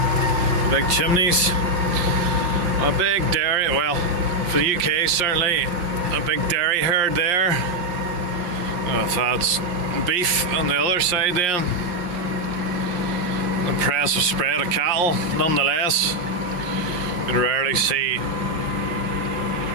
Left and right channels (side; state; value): left; late; 5.7 ms